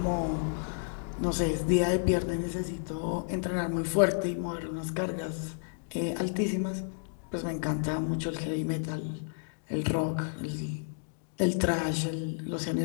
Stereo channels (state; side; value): silent; right; digital silence